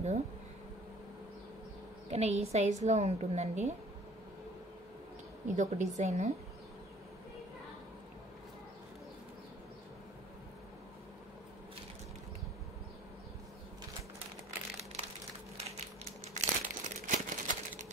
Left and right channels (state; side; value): normal; both; correlation 0.51